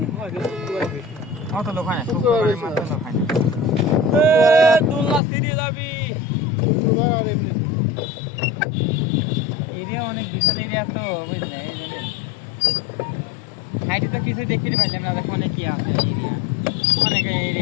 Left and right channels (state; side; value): drops out; right; at 5.2 s